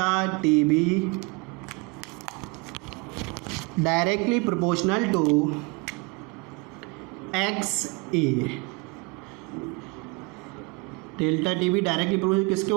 T B directly proportional to X A. Delta T B directly proportional किसके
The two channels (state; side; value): quieter; left; 28.0 dB